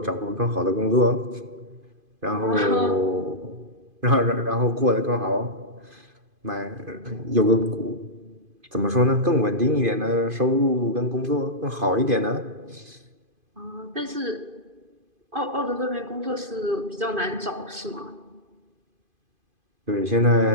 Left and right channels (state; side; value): late; left; 2.5 ms